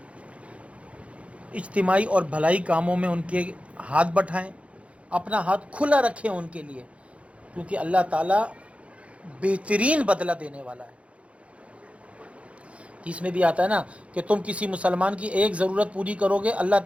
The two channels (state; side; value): late; left; 0.062 ms